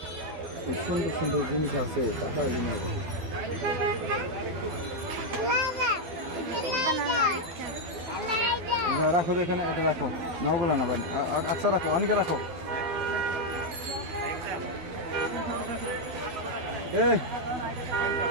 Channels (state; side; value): late; left; 12 ms